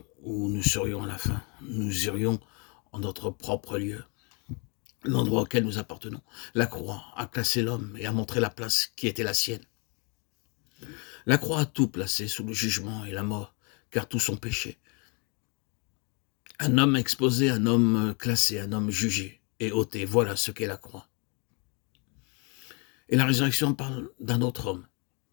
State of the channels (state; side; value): quieter; right; 33.4 dB